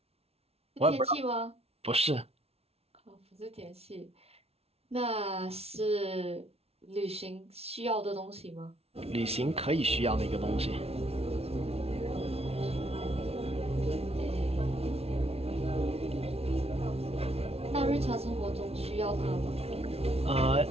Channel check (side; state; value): left; late; 0.30 ms